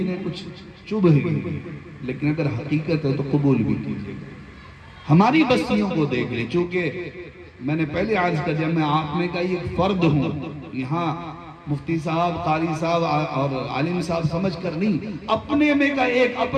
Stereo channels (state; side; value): identical; both; correlation 1.00